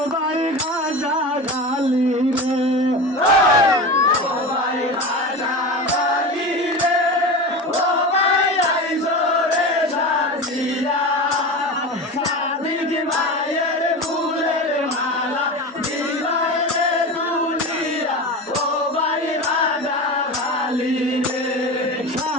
ভাই গাজা গালি রে ও ভাই গাজা গালি রে ও ভাই আইসো রে সাজিয়া সাদিক ভাইয়ের ফুলের মালা দিলাই রে তুলিয়া ও ভাই গাজা গালি রে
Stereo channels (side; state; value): both; normal; correlation 0.27